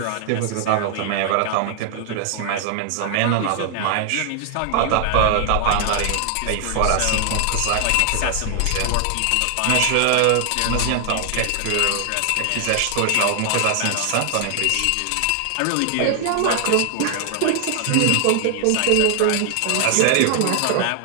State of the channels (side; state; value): both; different; correlation 0.00